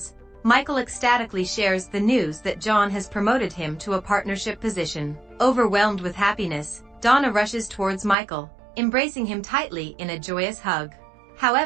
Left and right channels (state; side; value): drops out; left; at 8.2 s